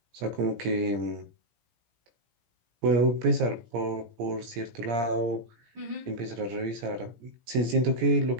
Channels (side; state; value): left; late; 17 ms